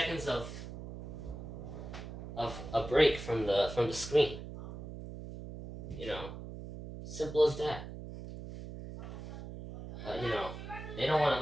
of a break from the screen. You know, simple as that. But you know, they don't want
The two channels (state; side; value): noise; right; hum, 10 dB below the sound